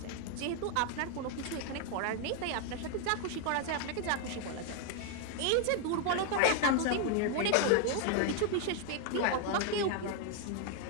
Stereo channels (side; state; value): both; different; correlation 0.00